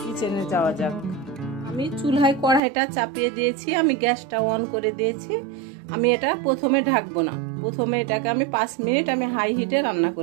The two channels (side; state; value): left; drops out; at 2.6 s